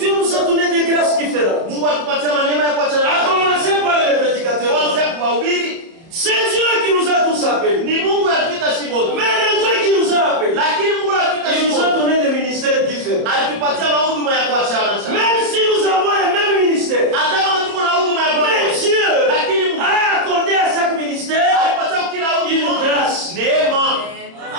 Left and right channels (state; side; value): late; left; 30 ms